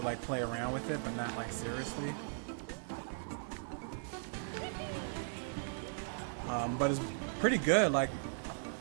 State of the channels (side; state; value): left; silent; digital silence